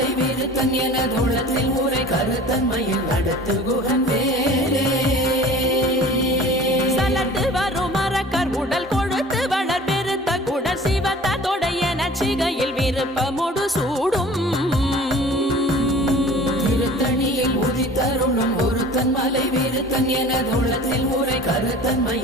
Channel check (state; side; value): normal; both; correlation 0.44